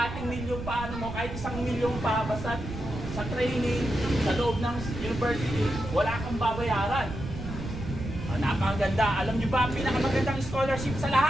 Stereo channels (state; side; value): noise; right; rumble, 8 dB below the sound